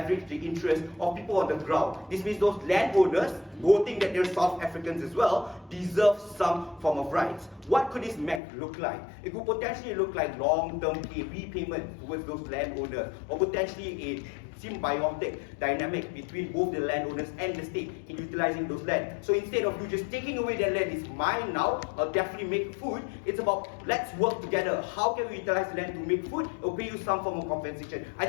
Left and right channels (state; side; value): drops out; right; at 8.4 s